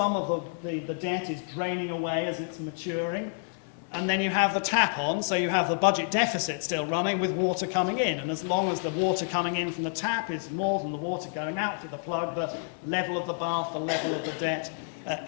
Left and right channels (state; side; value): silent; right; 59 dB below the other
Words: of the debt is draining away as it's maturing, and then you have the tap on, so you have the budget deficit still running with water coming in, and as long as the water coming in from the tap is more than the water going out through the plug, the level of the bath, the level of the debt